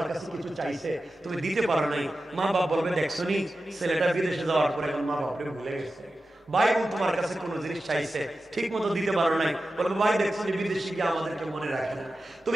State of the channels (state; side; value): normal; both; correlation 0.93